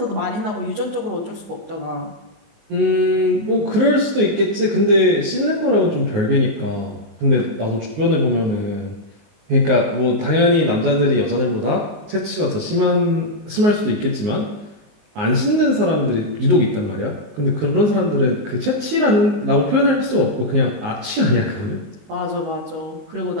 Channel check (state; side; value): late; left; 19 ms